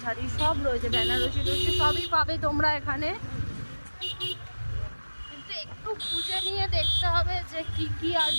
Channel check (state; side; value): inverted; both; correlation -1.00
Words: ঠাড়ি সব রয়েছে, বেনারসি টরসি সবই পাবে তোমরা এখানে। কিন্তু একটু খুঁজে নিয়ে দেখতে হবে যে কি কি আর